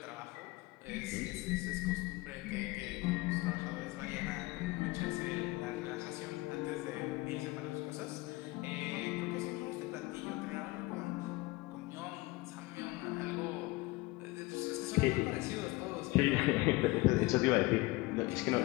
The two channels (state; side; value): quieter; right; 21.5 dB